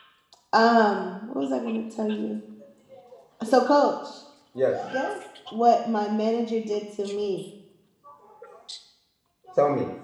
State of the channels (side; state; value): both; identical; correlation 1.00